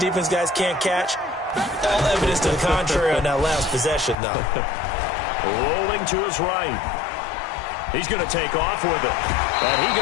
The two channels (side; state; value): right; drops out; at 4.2 s